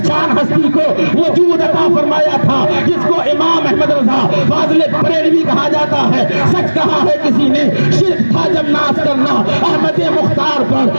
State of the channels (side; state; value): both; inverted; correlation -1.00